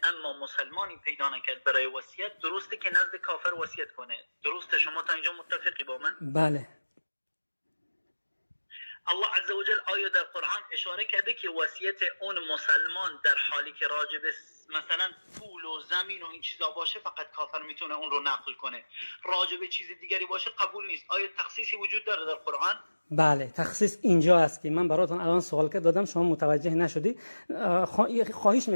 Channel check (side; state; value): both; inverted; correlation -1.00